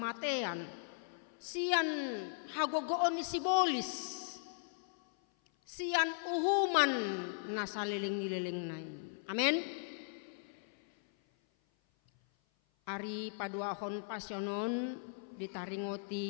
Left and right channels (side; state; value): right; silent; 53 dB below the other